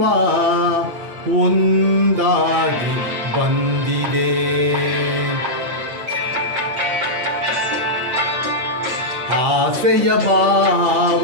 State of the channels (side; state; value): left; late; 8.6 ms